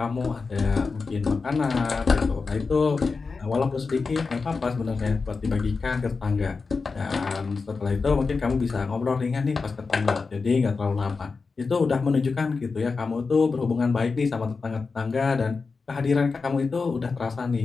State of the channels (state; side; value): quieter; right; 4.5 dB